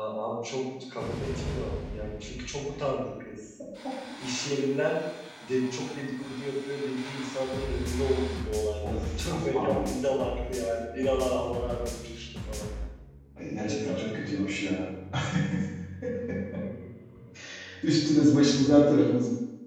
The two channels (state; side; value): identical; both; correlation 1.00